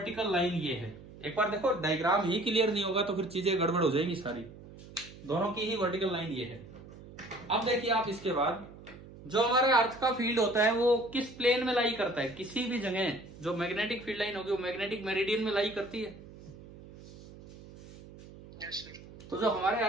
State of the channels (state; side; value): noise; right; hum, 18 dB below the sound